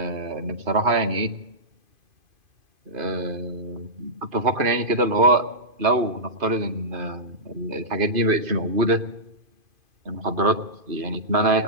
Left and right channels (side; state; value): left; late; 2.5 ms